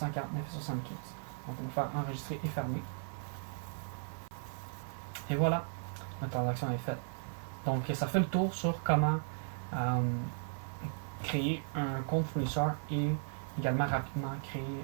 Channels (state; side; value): silent; left; 54 dB below the other